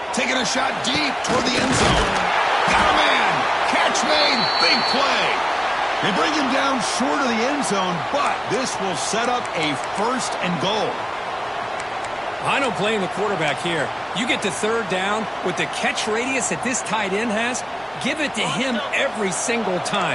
Taking a shot deep toward the end zone. Got a man. Catch made. Big play. They bring him down short of the end zone, but this will set up a 1st and goal. I don't blame the quarterback here. You get to 3rd down with the catch radius that this tight end has, give it to him every single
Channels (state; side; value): identical; both; correlation 1.00